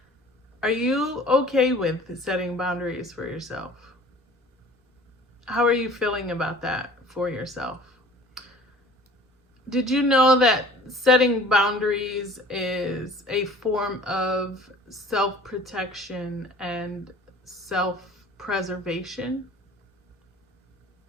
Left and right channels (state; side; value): normal; both; correlation 0.47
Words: Are you okay with setting boundaries for yourself? How are you feeling about that for yourself? Did you know that setting boundaries is a form of self-protection and self-preservation?